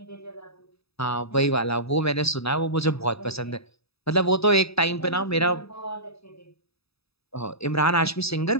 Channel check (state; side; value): late; right; 0.78 ms